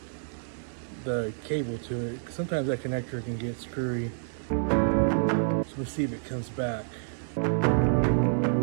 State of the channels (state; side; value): silent; left; 59 dB below the other